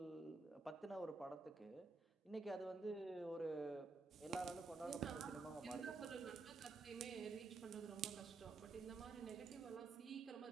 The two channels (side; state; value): left; quieter; 3.9 dB